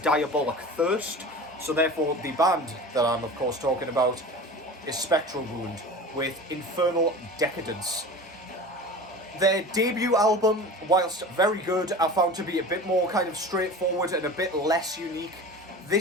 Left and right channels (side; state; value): both; normal; correlation 0.36